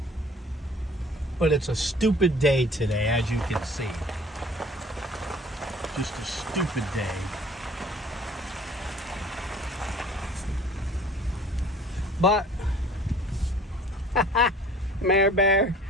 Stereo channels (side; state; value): both; normal; correlation 0.50